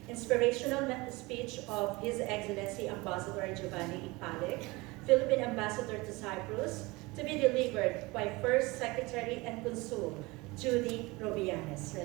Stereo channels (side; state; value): left; quieter; 23.4 dB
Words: inspirational speech of His Excellency Ambassador Giovanni E. Palec, Philippine Ambassador to Cyprus, to be delivered by First Secretary and Consul Judy Robianes.